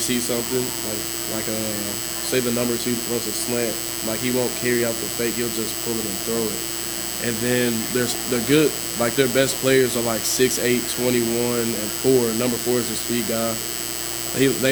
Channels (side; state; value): both; identical; correlation 1.00